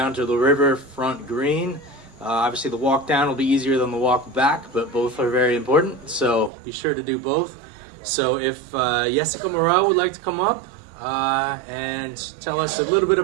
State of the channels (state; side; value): drops out; left; at 6.5 s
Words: to the Riverfront Green. Obviously the walk down will be easier than the walk back, but both are very important, so be sure to do both. So if Jessica Morel would like to come up and tell us a little bit